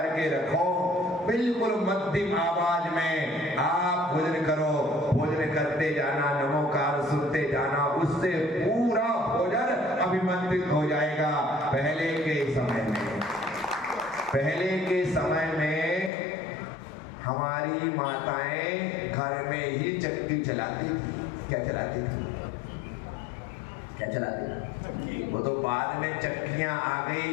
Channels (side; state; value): right; drops out; at 16.1 s